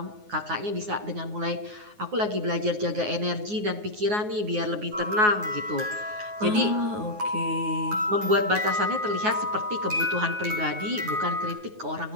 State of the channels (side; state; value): left; late; 9.5 ms